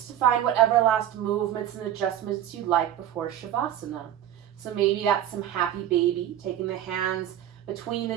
to find whatever last movements and adjustments you like before Shavasana. So maybe that's some happy baby, taking the hands between the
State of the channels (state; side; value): quieter; left; 11.2 dB